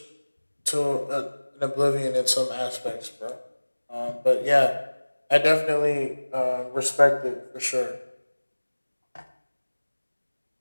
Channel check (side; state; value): both; inverted; correlation -1.00